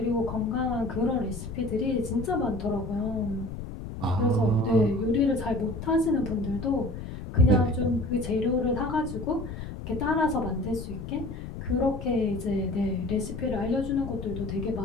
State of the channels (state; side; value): noise; left; rumble, 8 dB below the sound